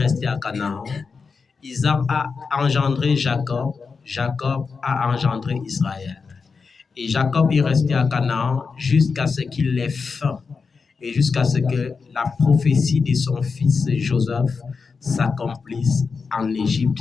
à Canaan. Isaac a engendré Jacob. Jacob a engendré Israël. Et Jacob est resté à Canaan jusqu'à ce qu'il ait faim et jusqu'à ce que la prophétie de son fils Joseph s'accomplisse en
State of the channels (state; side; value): quieter; right; 5.0 dB